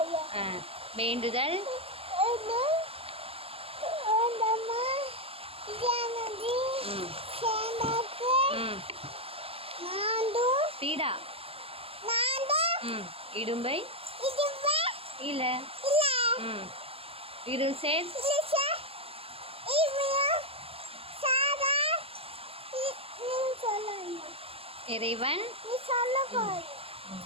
வேண்டுதல் பீடா இடும்பை இல்ல இருள் சேர் இறைவன்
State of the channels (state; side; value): late; left; 0.27 ms